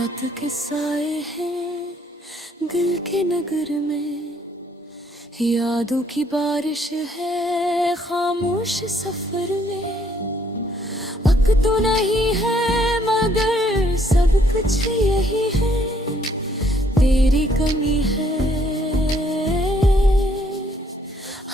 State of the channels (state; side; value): normal; both; correlation 0.67